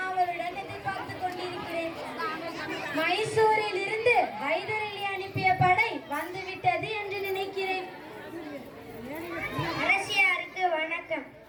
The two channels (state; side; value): identical; both; correlation 1.00